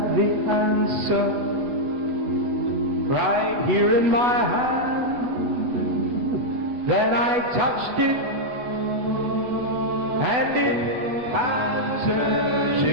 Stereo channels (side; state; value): left; late; 8.0 ms